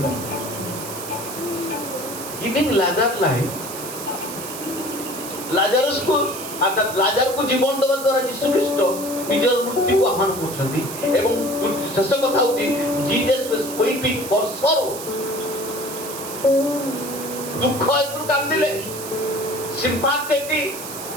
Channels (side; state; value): right; noise; hiss, 9 dB below the sound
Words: Giving Lazarus life, ଲାଜାରସକୁ ଅର୍ଥାৎ ଲାଜାରକୁ ଜୀବନ ଦେବା ଦ୍ୱାରା ଯୀଶୁ ଖ୍ରୀଷ୍ଟ ନିଜର ମୃତ୍ୟୁକୁ ଆହ୍ୱାନ କରୁଛନ୍ତି। ଏବଂ ଶେଷ କଥା ହଉଛି Jesus was weeping for sorrow, ଦୁଃଖ ହେତୁ କାନ୍ଦିଲେ।